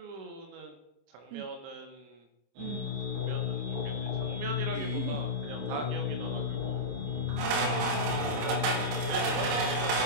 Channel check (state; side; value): late; left; 27 ms